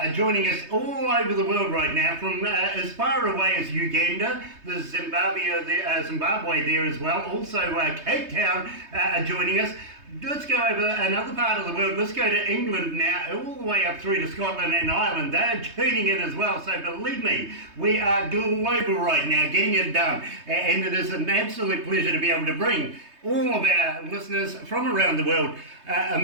joining us all over the world right now, from as far away as Uganda, there's Zimbabwe there as well. Also, Cape Town are joining us. Let's go over another part of the world. Let's go to England now, all the way up through to Scotland and Ireland. They're tuning in as well. So believe me, we are global right now, getting it done. And it is an absolute pleasure to be able to bring all of our listeners from around the world,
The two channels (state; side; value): late; left; 3.2 ms